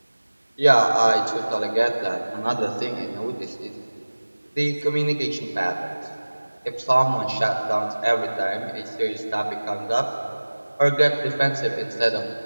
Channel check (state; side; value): inverted; both; correlation -1.00